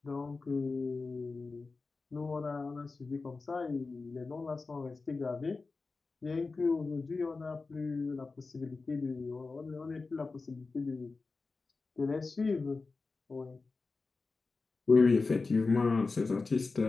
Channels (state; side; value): quieter; right; 4.0 dB